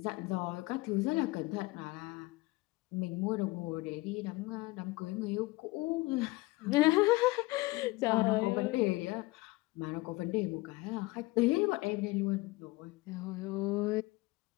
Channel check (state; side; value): quieter; right; 21.7 dB